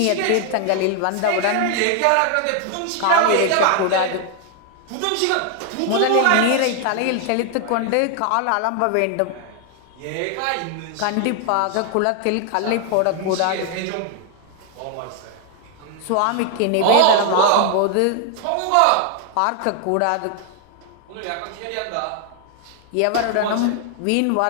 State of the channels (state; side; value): different; both; correlation 0.00